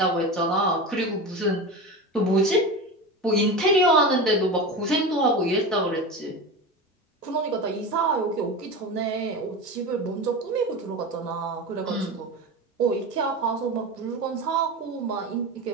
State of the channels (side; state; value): both; normal; correlation 0.26